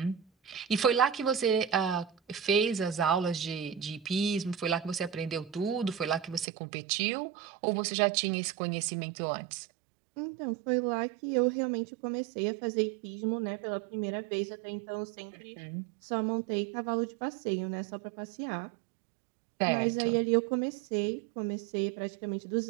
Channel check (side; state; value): left; drops out; at 6.5 s